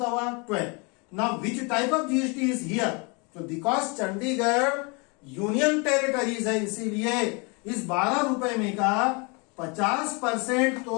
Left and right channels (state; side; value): quieter; right; 31.1 dB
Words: हुआ? 12। Now which type of GST is here? तो बिकॉज चंडीगढ़ यूनियन टेरिटरीज है, इसीलिए इस 12 रुपए में का 50%